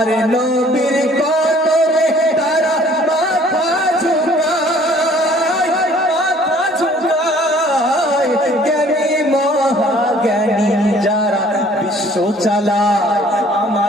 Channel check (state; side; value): normal; both; correlation 0.56